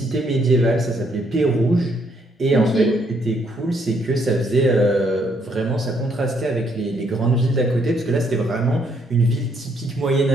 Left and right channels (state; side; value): normal; both; correlation 0.71